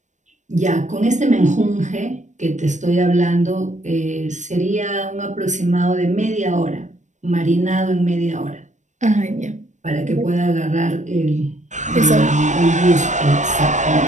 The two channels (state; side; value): late; left; 0.35 ms